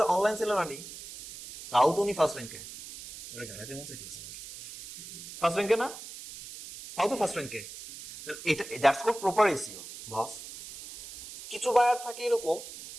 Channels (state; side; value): noise; right; hiss, 13 dB below the sound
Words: অনলাইন সেলার আনি তাও তো উনি ফার্স্ট র্যাঙ্কে, ফার্স্ট র্যাঙ্কে না, তাও তো ফার্স্ট র্যাঙ্কে। এটা দ্যাটস কল্ড প্রপার এসইও বস। কিছু বায়ার থাকে এরকম